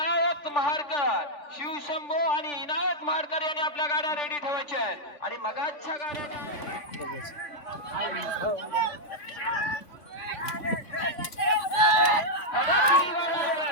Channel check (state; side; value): late; right; 3.5 ms